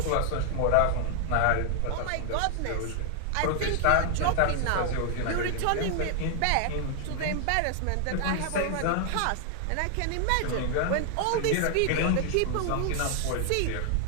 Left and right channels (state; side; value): different; both; correlation 0.00